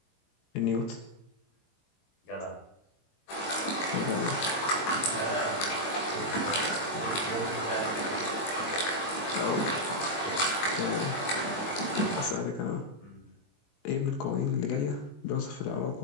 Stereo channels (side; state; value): right; late; 22 ms